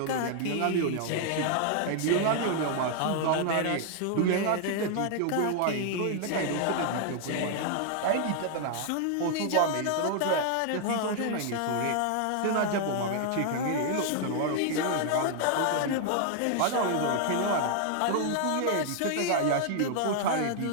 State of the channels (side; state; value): both; different; correlation 0.00